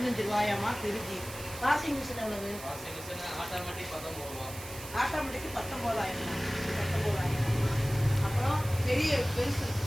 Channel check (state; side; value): noise; right; hiss, 13 dB below the sound